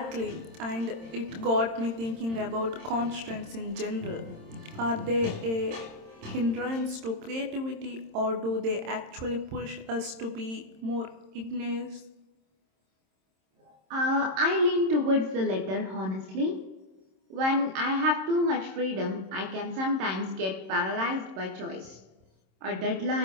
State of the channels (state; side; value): late; left; 26 ms